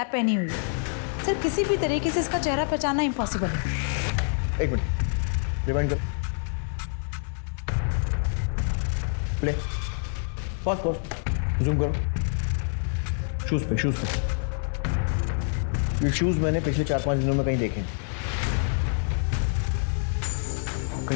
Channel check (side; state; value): right; silent; 55 dB below the other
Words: पहनी हुई है। सर किसी भी तरीके से इसका चेहरा पहचानना इम्पॉसिबल है। 1 मिनट रिवाइंड करो, प्ले, पॉज, जूम करो। शूज पे ये शूज मैंने पिछले 4-5 दिनों में कहीं देखे हैं,